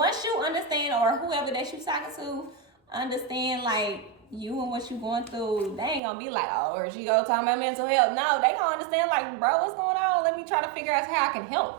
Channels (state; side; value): drops out; left; at 6.0 s